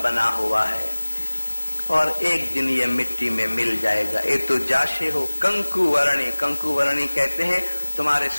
بنا ہوا ہے اور ایک دن یہ مٹی میں مل جائے گا۔ یہ تو جاشے ہو کنکو ورنی، کنکو ورنی کہتے ہیں تمہارے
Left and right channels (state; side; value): inverted; both; correlation -1.00